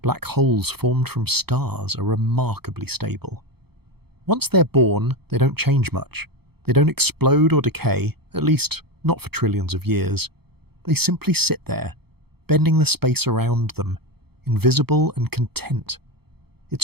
black holes formed from stars are remarkably stable. Once they're born, they don't change much. They don't explode or decay, at least not for trillions of years. They simply sit there, bending the space around them, invisible and content.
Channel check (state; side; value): late; left; 0.96 ms